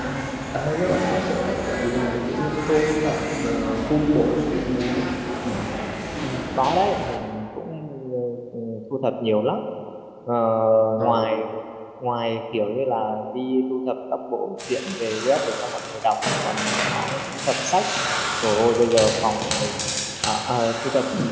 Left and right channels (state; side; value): identical; both; correlation 1.00